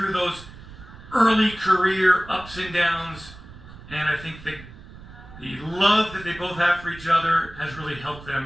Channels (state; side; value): noise; right; rumble, 17 dB below the sound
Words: those early career ups and downs. And I think the love that they both have for each other has really helped